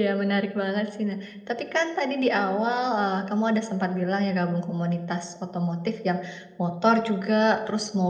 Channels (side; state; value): both; identical; correlation 1.00